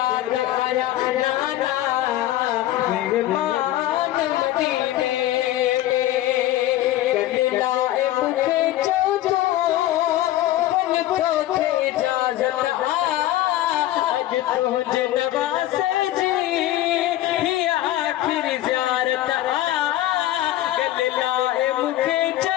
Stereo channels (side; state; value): right; quieter; 14.3 dB